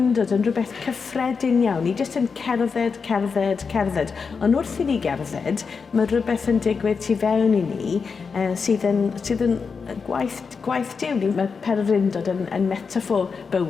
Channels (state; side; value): quieter; right; 5.4 dB